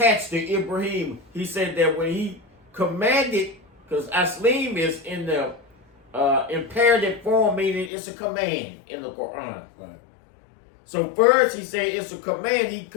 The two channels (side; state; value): right; drops out; at 7.9 s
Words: to Ibrahim. He said that when he commanded, because aslim is in the imperative form, meaning it's a command in the Quran. Right. So first he said it's a command. He